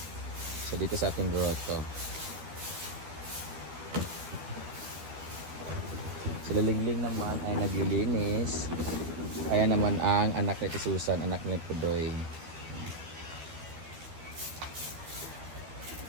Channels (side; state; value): left; late; 13 ms